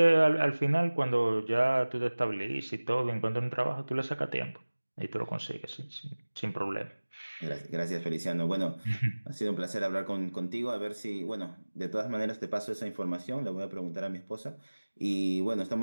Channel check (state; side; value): inverted; both; correlation -1.00